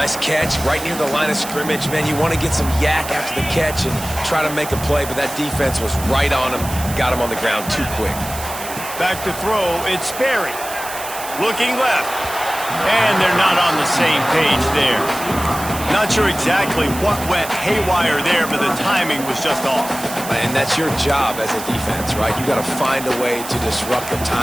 catch right near the line of scrimmage. Man, you want to get some yak after the catch and try to make a play, but that defense was right on him. Got him on the ground too quick. Back to throw, it's Sperry. Looking left. And they're not on the same page there. Not sure exactly what went haywire there, but the timing was just off. And that's your job as a defense, right? You got to find a way to disrupt the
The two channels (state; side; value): noise; right; hiss, 10 dB below the sound